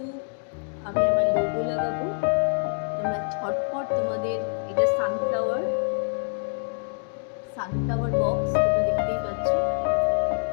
আমি আমার লোগো লাগাবো। তোমরা ঝটপট তোমাদের এটা সানফ্লাওয়ার বক্স তোমরা দেখতেই পাচ্ছ।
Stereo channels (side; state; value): right; silent; digital silence